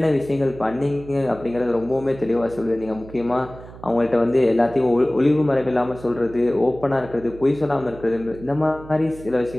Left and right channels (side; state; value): right; noise; hum, 17 dB below the sound